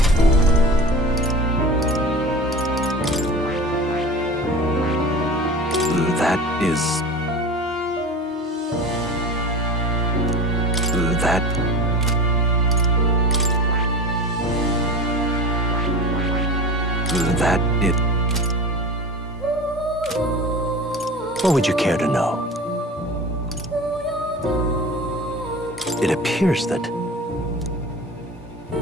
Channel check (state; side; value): normal; both; correlation 0.34